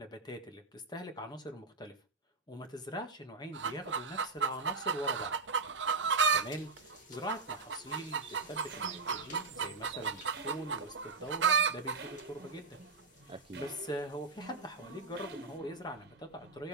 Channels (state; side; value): quieter; left; 4.1 dB